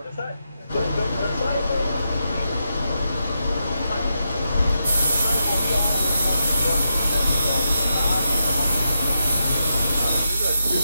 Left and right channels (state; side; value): inverted; both; correlation -0.85